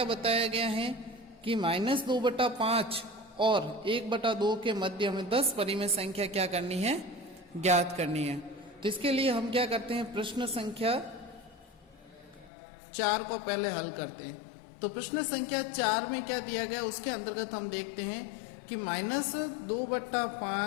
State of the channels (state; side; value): drops out; right; at 12.5 s